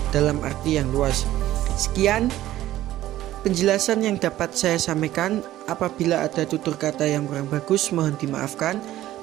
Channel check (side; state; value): left; quieter; 14.3 dB